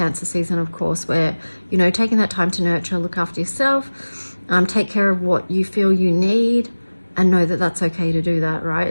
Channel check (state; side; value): inverted; both; correlation -1.00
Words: season, of course, where, you know, taking that time to nurture, look after yourself, take care of what you feel you need, and know that that's okay to do that, right?